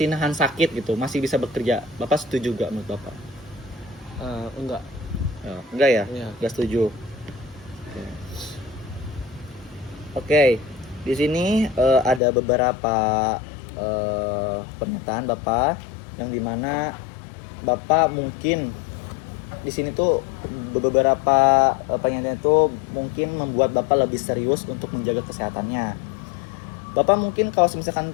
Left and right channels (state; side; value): drops out; right; at 12.2 s